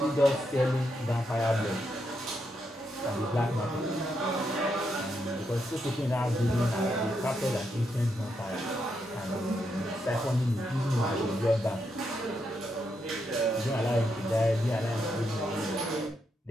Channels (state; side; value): normal; both; correlation 0.81